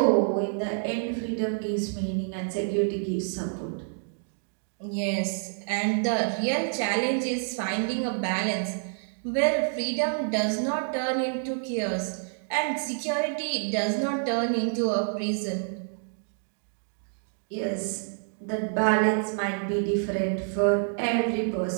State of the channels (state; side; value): silent; left; digital silence